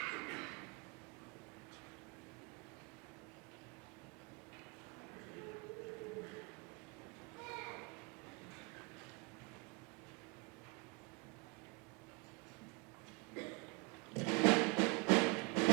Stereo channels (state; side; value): quieter; left; 29.4 dB